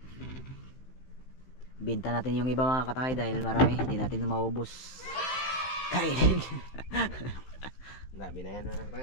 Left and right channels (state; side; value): late; right; 15 ms